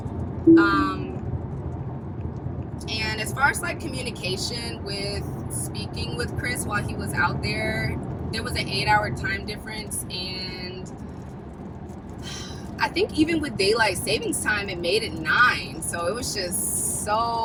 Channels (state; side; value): identical; both; correlation 1.00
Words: And as far as communication with speaking with Chris while he was out there was an 8-hour time difference, and I think even with daylight savings time, it made it 9. So it was just